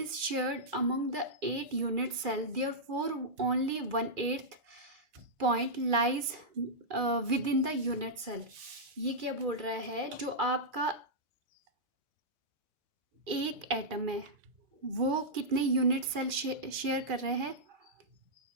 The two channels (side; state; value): left; late; 2.4 ms